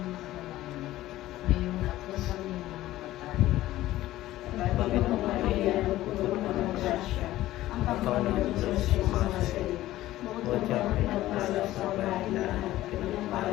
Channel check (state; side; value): quieter; right; 15.4 dB